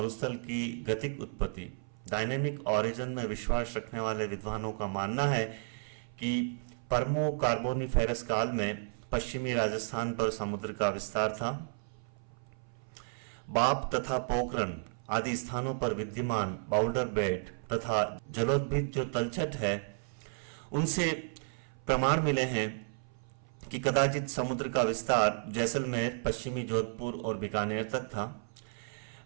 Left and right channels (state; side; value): silent; left; 56 dB below the other